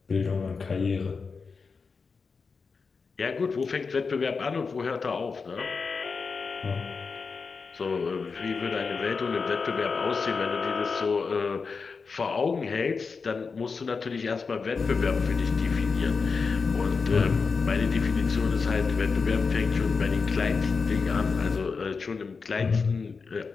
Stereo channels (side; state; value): right; quieter; 4.9 dB